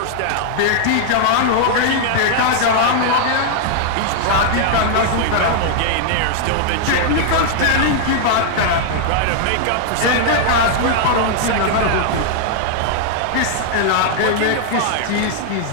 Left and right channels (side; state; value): both; different; correlation 0.00